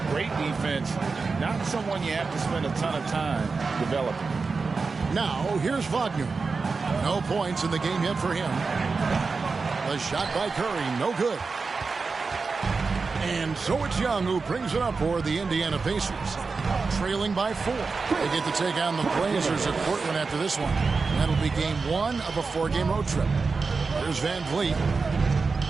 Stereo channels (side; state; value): left; quieter; 4.5 dB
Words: Great defense. Not someone you have to spend a ton of time developing. Now, here's Wagner. No points in the game yet for him. The shot by Curry, no good. And so it's Young who brings it up for the Indiana Pacers. Trailing by 4. They get to take on the Blazers at Portland after this one. That'll be game 1 of a 4-game road trip. Here's Van Vliet.